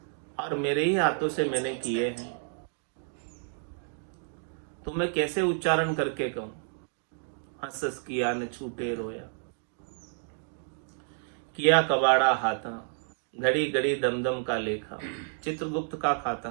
और मेरे ही हाथों से मैंने किए हैं, तो मैं कैसे उच्चारण करके कहूं। हंस हंस किया न छूटे रोया, किया कबाड़ा हाथा, घड़ी घड़ी दमदम का लेखा, चित्रगुप्त का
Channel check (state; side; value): silent; left; digital silence